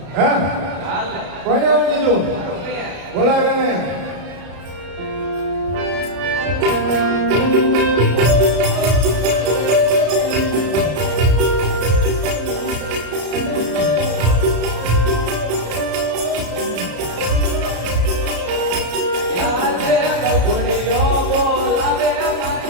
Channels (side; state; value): left; late; 33 ms